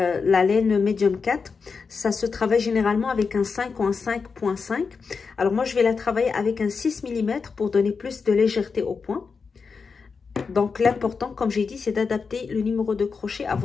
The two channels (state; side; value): quieter; right; 5.2 dB